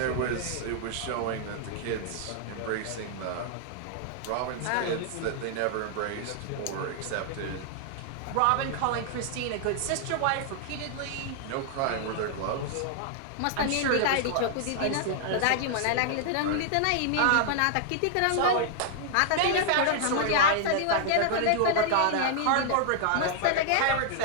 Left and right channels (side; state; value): both; different; correlation -0.01